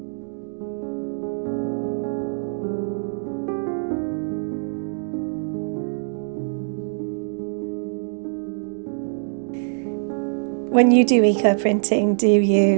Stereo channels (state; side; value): silent; left; digital silence